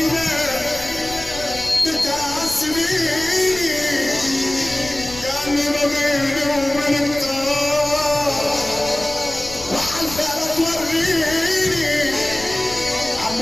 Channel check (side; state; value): left; noise; rumble, 15 dB below the sound